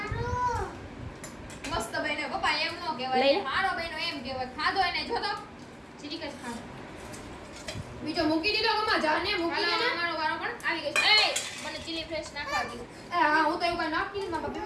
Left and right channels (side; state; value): both; identical; correlation 1.00